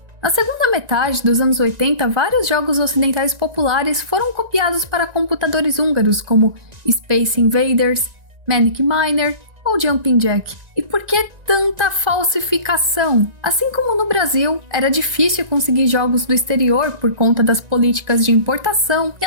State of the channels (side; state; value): left; late; 1.9 ms